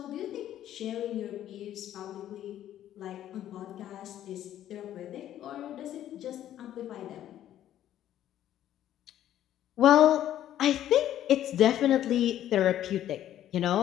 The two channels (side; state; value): right; quieter; 11.9 dB